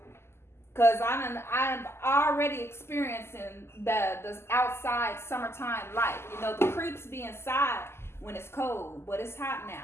Because I'm already experiencing the outside summertime life. You know, the creeps be inside when it's cold, but it's hot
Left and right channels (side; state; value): right; late; 0.12 ms